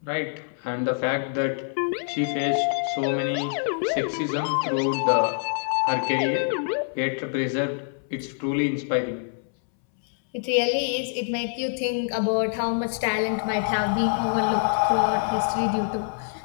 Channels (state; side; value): silent; right; 61 dB below the other